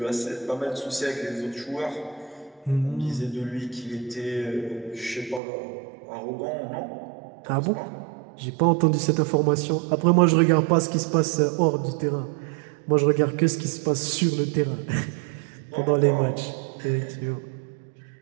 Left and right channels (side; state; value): left; drops out; at 5.4 s